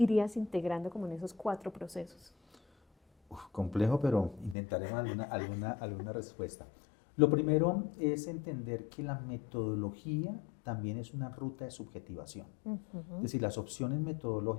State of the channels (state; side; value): drops out; right; at 4.5 s